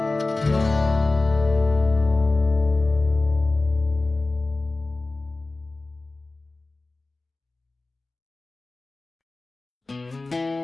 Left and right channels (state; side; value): quieter; right; 3.2 dB